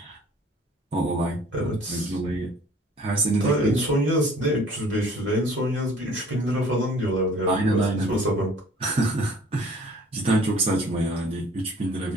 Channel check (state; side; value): normal; both; correlation 0.53